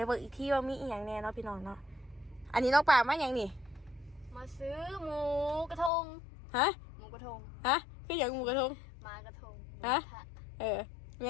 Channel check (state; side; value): drops out; right; at 5.9 s